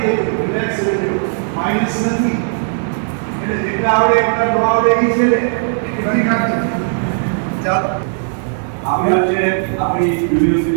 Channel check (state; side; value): silent; left; digital silence